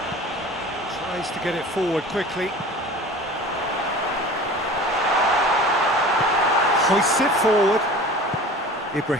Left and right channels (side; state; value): both; normal; correlation 0.40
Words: to get it forward quickly. Hoists it forward.